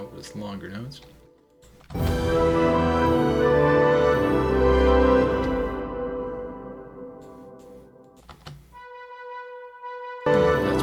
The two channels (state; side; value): identical; both; correlation 1.00